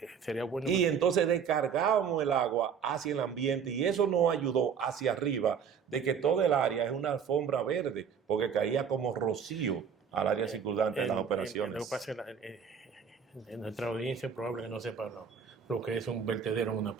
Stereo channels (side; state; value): left; quieter; 7.0 dB